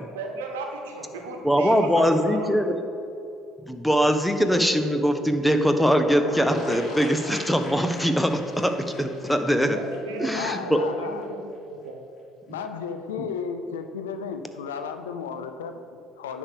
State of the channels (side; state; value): both; normal; correlation 0.82